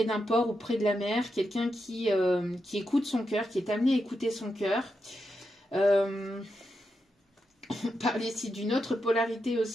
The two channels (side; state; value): both; normal; correlation 0.86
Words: d'un port ou près de la mer, quelqu'un qui écoute son cœur, qui est amené à écouter son cœur. On parle ici d'une autre polarité